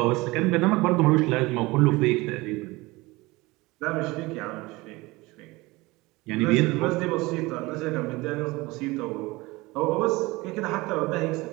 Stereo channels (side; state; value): left; quieter; 21.9 dB